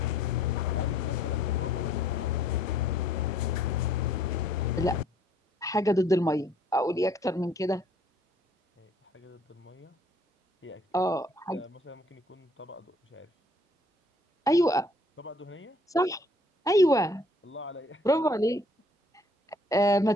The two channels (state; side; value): normal; both; correlation 0.61